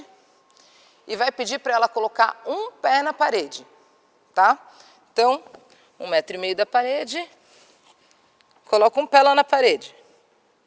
e vai pedir para ela colocar um pé na parede, tá? Então, 1,5 m da parede, coloca um pé lá na parede.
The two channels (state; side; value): identical; both; correlation 1.00